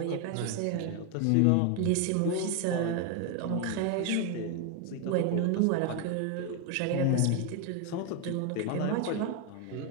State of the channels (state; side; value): different; both; correlation 0.01